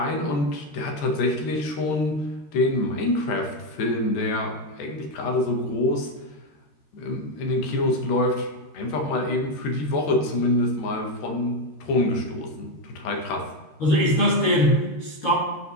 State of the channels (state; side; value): late; right; 13 ms